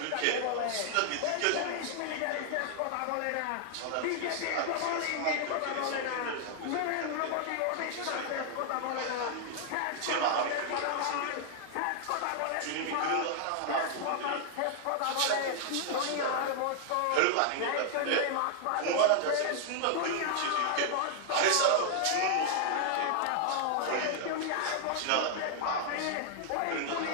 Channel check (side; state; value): both; different; correlation 0.00